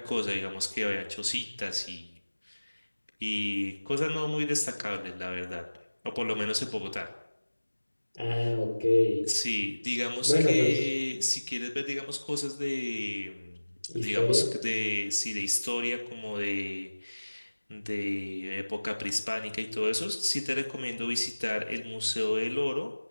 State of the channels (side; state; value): both; inverted; correlation -1.00